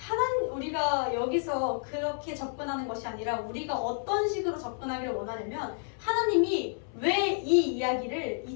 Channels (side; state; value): right; silent; 58 dB below the other